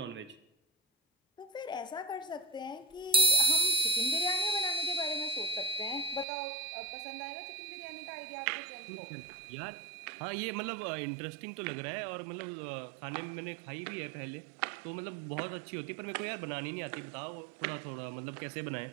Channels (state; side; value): drops out; left; at 6.2 s